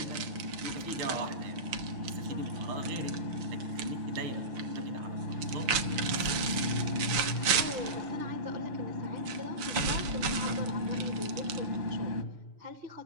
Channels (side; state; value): left; late; 6.4 ms